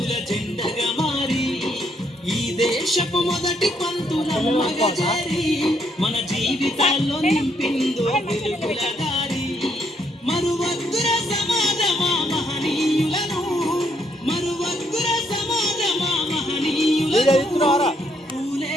జెండగా మారి ఈ దేశపు మొదటి పంతులమ్మగా చేరి మన జీవితాల్లో నింపిందో వెలుగుల దారి. మరువద్దుర సమాజమా మహనీయులను, మరువద్దుర సమాజమా మహనీయులను,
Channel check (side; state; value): both; normal; correlation 0.73